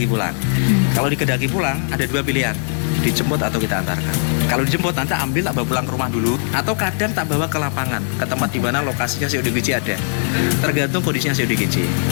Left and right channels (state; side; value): silent; right; 61 dB below the other